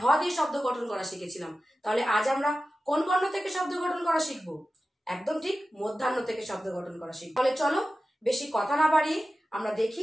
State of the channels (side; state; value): both; normal; correlation 0.94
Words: দিয়ে শব্দ গঠন করা শিখেছিলাম, তাহলে আজ আমরা কোন বর্ণ থেকে শব্দ গঠন করা শিখবো? একদম ঠিক, মধ্যাহ্ন থেকে শব্দ গঠন করা শিখবো। তাহলে চলো বেশি কথা না বাড়িয়ে আমরা দেখি